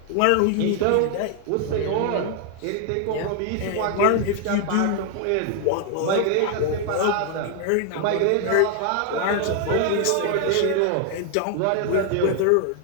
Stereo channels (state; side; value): different; both; correlation 0.00